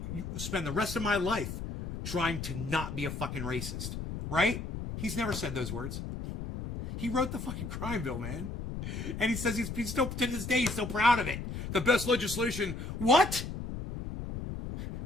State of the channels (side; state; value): left; noise; rumble, 6 dB below the sound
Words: to spend the rest of my life trying to not be a fucking racist. Right? He's never said those words. He wrote the fucking crime bill, man. And he says he's still, to this day, he's still proud of it. The best legislation. What?